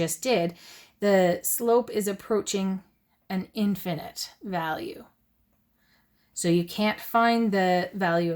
did. The slope is approaching an infinite value. So you can't find the value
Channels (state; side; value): identical; both; correlation 1.00